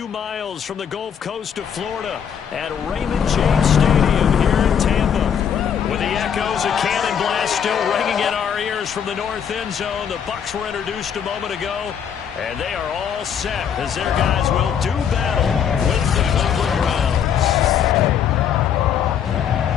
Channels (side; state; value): right; quieter; 8.2 dB